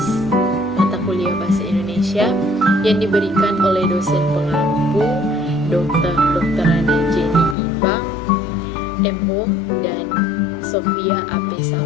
mata kuliah Bahasa Indonesia yang diberikan oleh dosen pengampu Dr. Ana Jenny Ibang, M.Hum, dan Sofia A.P.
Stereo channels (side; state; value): right; drops out; at 7.6 s